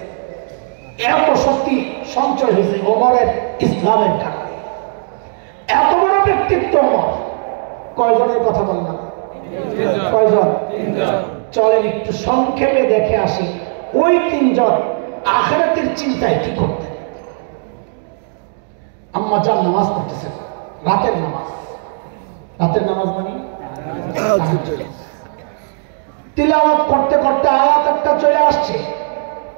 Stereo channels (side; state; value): left; silent; digital silence